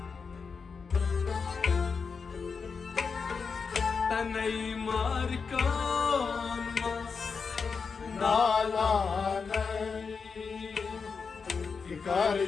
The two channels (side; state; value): right; quieter; 5.4 dB